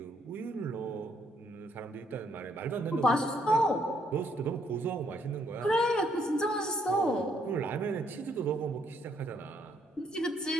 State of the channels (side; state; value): both; normal; correlation 0.70